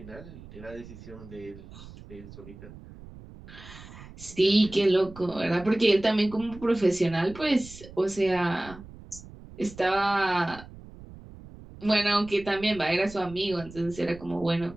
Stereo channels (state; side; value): noise; right; rumble, 17 dB below the sound